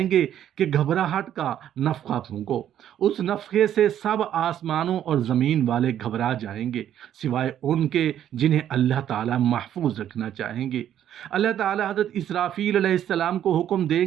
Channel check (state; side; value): quieter; left; 10.6 dB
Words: گے کہ گھبراہٹ کا نفخہ پھونکو۔ اس نفخے سے سب آسمانوں اور زمین والے گھبرا جائیں گے، سوائے ان کے جنہیں اللہ تعالیٰ محفوظ رکھنا چاہیں گے۔ اللہ تعالیٰ حضرت اسرافیل علیہ السلام کو حکم دیں